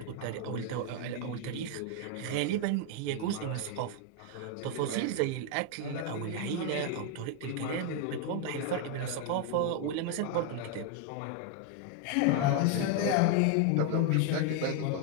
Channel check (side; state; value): both; different; correlation 0.01